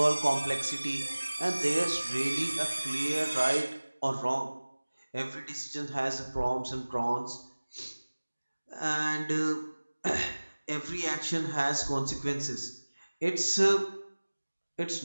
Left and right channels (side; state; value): both; inverted; correlation -1.00